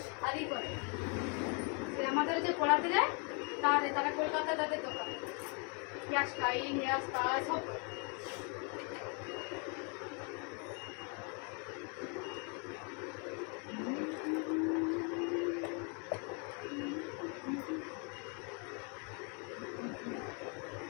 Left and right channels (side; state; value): right; quieter; 36.0 dB